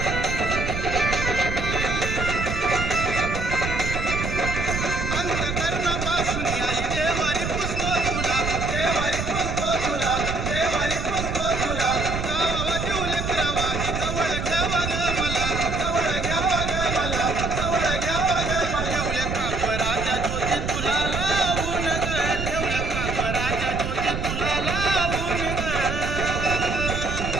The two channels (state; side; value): noise; right; rumble, 4 dB below the sound